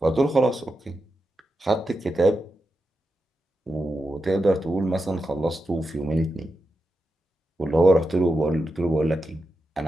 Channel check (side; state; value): both; normal; correlation 0.89